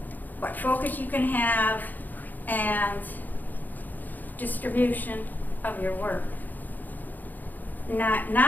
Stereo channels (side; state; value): right; late; 0.085 ms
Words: focus you can have and distribution of your work.